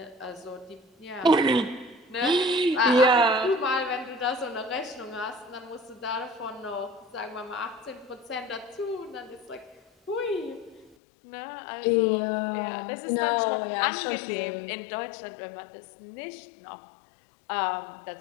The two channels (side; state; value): right; drops out; at 11.0 s